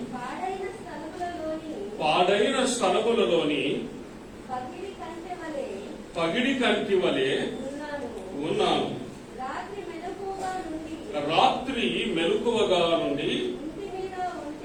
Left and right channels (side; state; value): both; identical; correlation 1.00